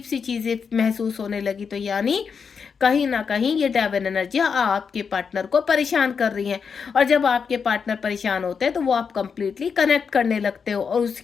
सी चीजें महसूस होने लगी। तो यानी कहीं ना कहीं ये डेविल एनर्जियां आपके पार्टनर को परेशान कर रही हैं। और जब आपके पार्टनर परेशान होते हैं तो वो आप कंप्लीटली कनेक्ट करने लगते हो, और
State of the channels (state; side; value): quieter; right; 6.1 dB